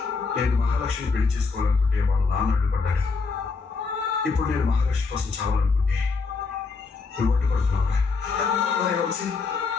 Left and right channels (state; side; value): quieter; right; 4.5 dB